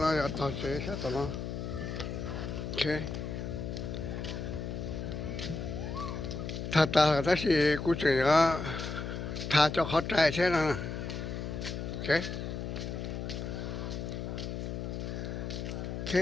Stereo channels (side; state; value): left; noise; hum, 5 dB below the sound